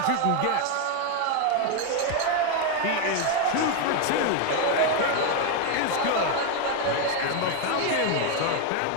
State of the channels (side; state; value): both; different; correlation 0.01